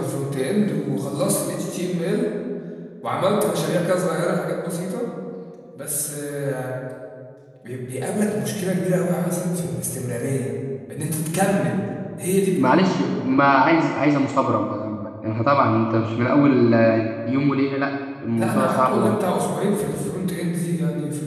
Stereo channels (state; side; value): identical; both; correlation 1.00